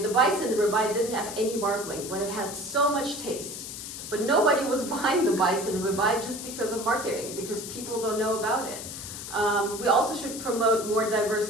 the bison ribeye didn't have any marbling, but it had so much taste. But nobody was buying the bison ribeye just because of marketing, because people don't know about it. We also should promote more diverse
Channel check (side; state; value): left; noise; hiss, 9 dB below the sound